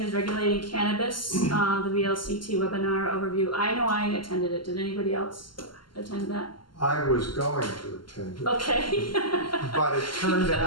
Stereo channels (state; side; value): late; right; 0.72 ms